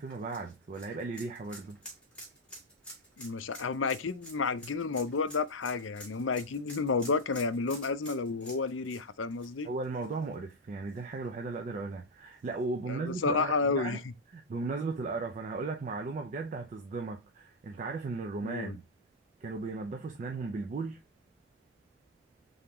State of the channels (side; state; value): both; normal; correlation 0.02